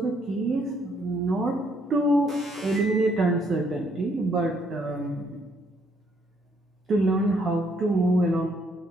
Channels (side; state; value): both; normal; correlation 0.70